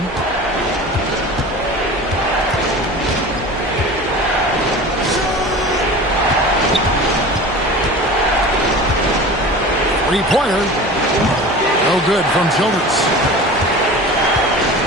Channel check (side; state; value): left; noise; hum, 19 dB below the sound